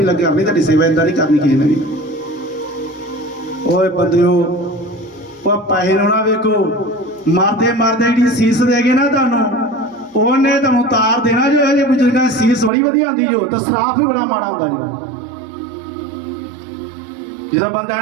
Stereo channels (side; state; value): left; drops out; at 12.7 s